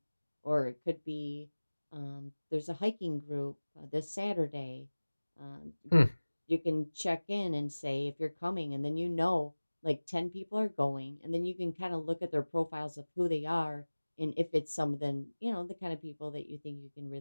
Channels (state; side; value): inverted; both; correlation -1.00